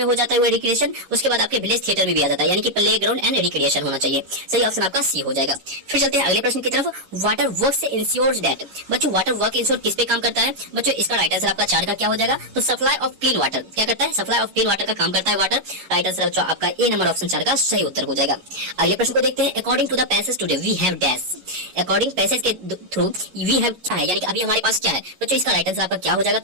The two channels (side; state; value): left; late; 11 ms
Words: हो जाता है वो रिक्रिएशन, उसके बाद आपके विलेज थिएटर में भी आ जाता है, यानी कि प्लेग्राउंड एंड रिक्रिएशन होना चाहिए। सही ऑप्शन आपका सी हो जाएगा। फिर चलते हैं अगले प्रश्न की तरफ। Water works ensures that. बच्चों वाटर वर्क इंश्योर किस पे काम करता है। बच्चों इसका राइट आंसर आपका 4 का क्या हो जाएगा, तो सप्लाई ऑफ क्लीन वाटर। क्या करता है, सप्लाई ऑफ क्लीन वाटर का काम करता है वाटर। राइट आंसर बच्चों आपका ए नंबर ऑप्शन 4 का सही उत्तर हो जाएगा। अगले प्रश्न को देखते हैं। According to the passage today we have dash. According passage के थ्रू वी हैव क्या है, यानी कि अभी हमारे पास क्या है। बच्चों इसका राइट आंसर आपका क्या हो जाएगा,